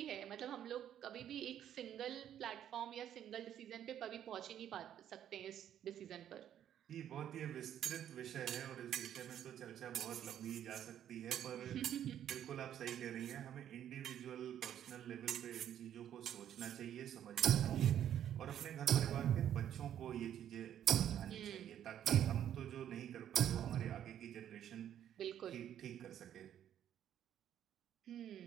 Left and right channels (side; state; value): left; quieter; 10.4 dB